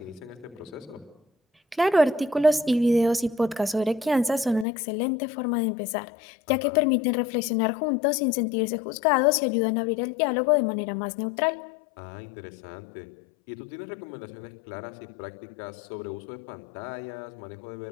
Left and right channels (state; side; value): drops out; right; at 4.7 s